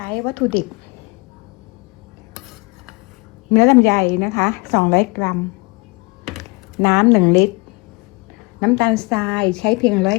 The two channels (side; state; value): right; quieter; 27.5 dB